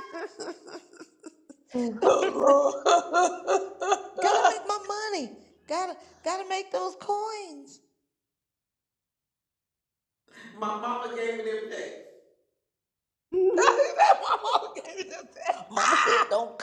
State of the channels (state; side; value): identical; both; correlation 1.00